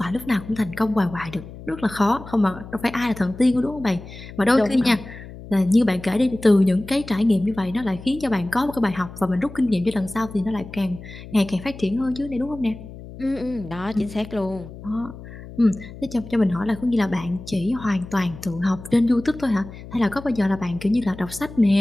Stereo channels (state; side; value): noise; left; hum, 15 dB below the sound